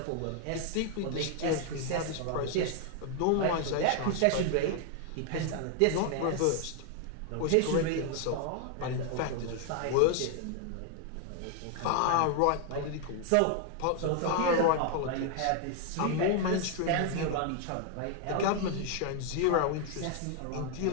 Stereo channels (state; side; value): different; both; correlation 0.00